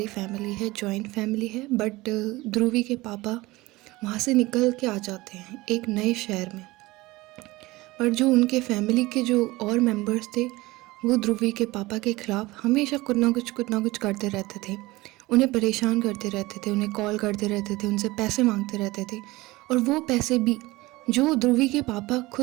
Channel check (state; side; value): quieter; left; 20.3 dB